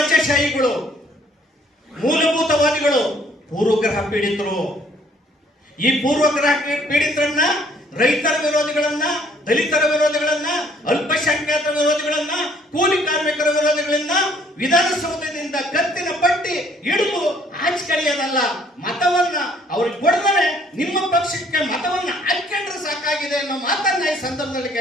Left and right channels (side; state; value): both; normal; correlation 0.62